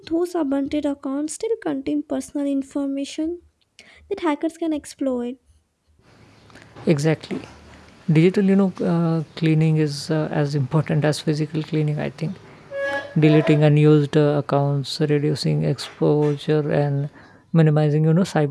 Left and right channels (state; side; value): identical; both; correlation 1.00